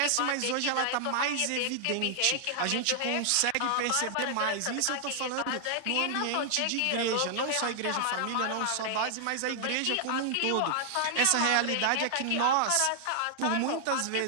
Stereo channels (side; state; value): both; different; correlation 0.00